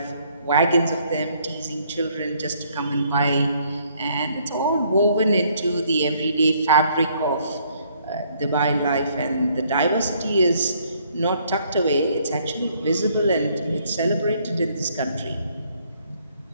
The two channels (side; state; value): both; inverted; correlation -0.65